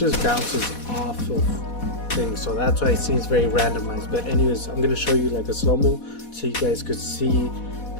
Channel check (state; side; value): late; right; 4.1 ms